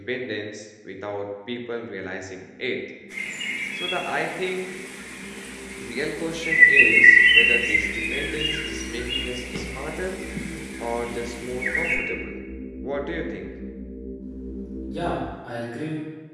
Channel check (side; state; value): both; identical; correlation 1.00